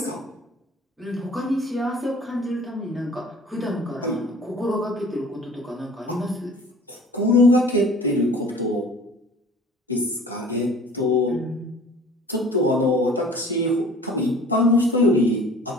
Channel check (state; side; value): normal; both; correlation 0.47